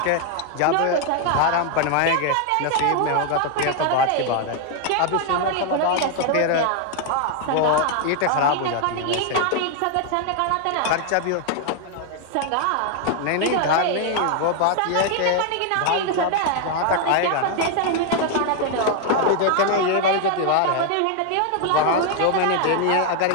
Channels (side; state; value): both; different; correlation 0.00